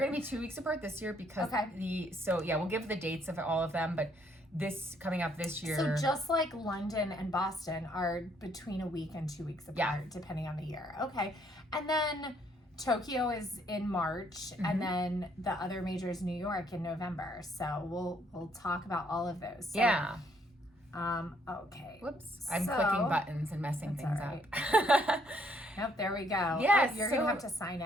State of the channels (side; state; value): both; normal; correlation 0.68